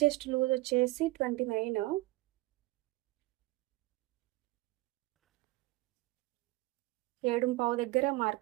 చెస్ట్ లూజ్ వచ్చేసి 29. ఏడుంపావు దగ్గర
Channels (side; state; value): left; quieter; 20.5 dB